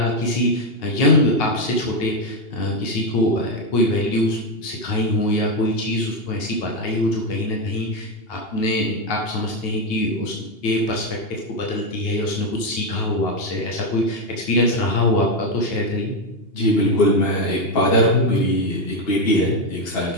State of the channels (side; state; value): right; late; 2.8 ms